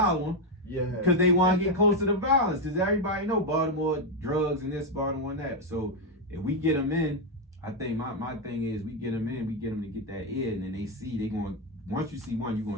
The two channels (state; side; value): normal; both; correlation 0.05